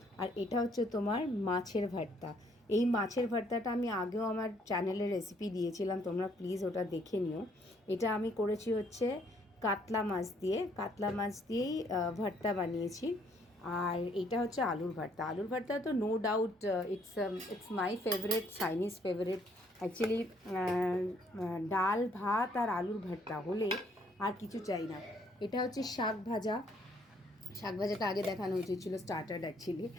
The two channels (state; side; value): normal; both; correlation 0.66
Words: আর এটা হচ্ছে তোমার মাছের ভর্তা। এই মাছের ভর্তাটা আমি আগেও আমার চ্যানেলে রেসিপি দিয়েছিলাম, তোমরা প্লিজ ওটা দেখে নিও। এটা আমি করেছি হচ্ছে কাতলা মাছ দিয়েই ভর্তা বানিয়েছি। আর এটা হচ্ছে আলুর ভর্তা। আলুর ভর্তা তো no doubt it's my favourite, Chinese favourite actually. ডাল ভাত আর আলুর ভর্তা হলে আর কিছু চাই না। এটা হচ্ছে শাক ভাজা। শাক ভাজাটা আগে দেখানো উচিত ছিল, স্টার্টার অ্যাকচুয়ালি।